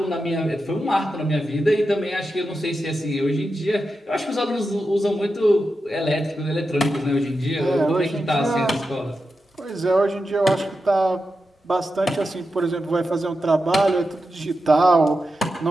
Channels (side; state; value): both; normal; correlation 0.90